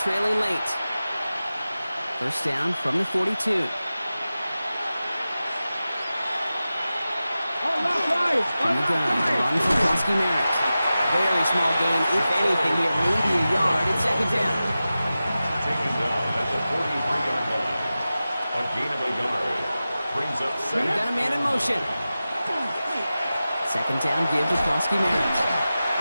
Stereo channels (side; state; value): both; inverted; correlation -0.95